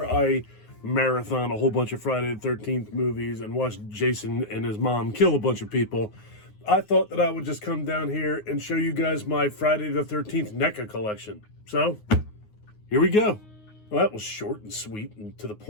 I marathon a whole bunch of Friday the 13th movies and watch Jason and his mom kill a bunch of people, I thought that I would just come down here and show you guys my Friday the 13th NECA collection. So, here we go. Well, that was short and sweet and to the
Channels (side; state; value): right; late; 9.5 ms